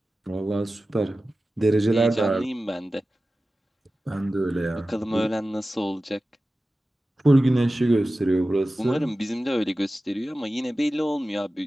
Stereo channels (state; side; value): normal; both; correlation 0.95